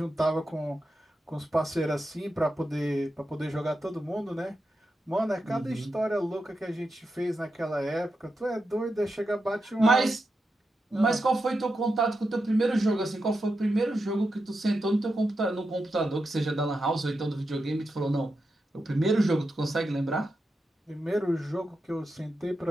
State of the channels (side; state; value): both; normal; correlation 0.88